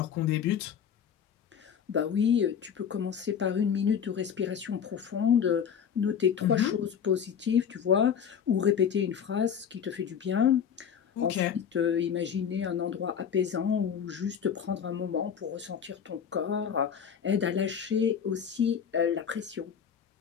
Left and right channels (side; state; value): right; quieter; 7.8 dB